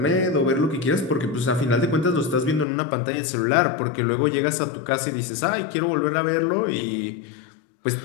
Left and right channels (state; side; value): drops out; right; at 2.7 s